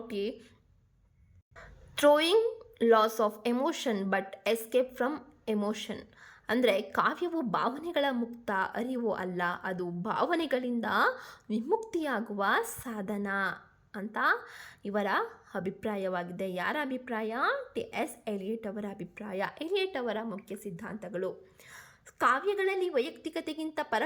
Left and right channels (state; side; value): identical; both; correlation 1.00